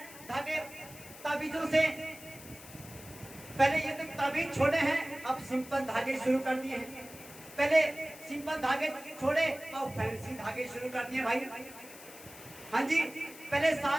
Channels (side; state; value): left; noise; hiss, 17 dB below the sound